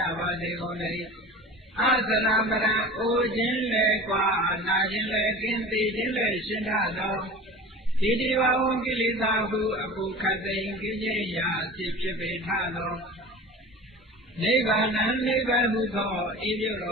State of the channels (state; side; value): normal; both; correlation 0.37